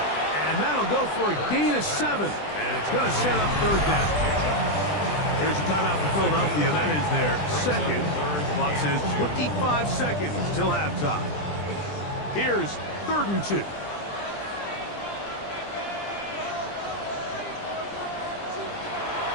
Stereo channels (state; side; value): late; right; 20 ms